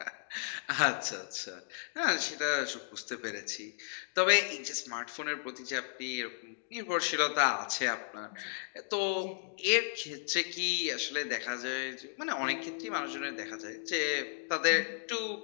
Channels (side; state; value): right; silent; digital silence